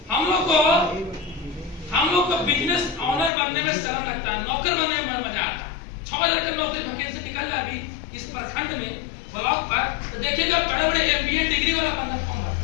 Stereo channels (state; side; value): drops out; right; at 3.3 s